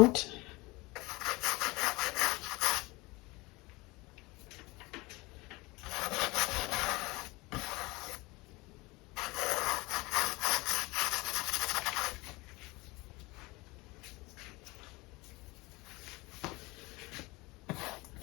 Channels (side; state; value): right; quieter; 23.3 dB